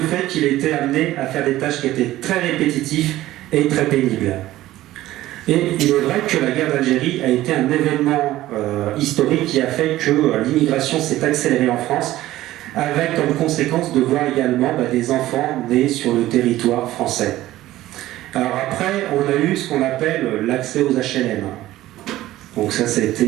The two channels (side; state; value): left; quieter; 15.4 dB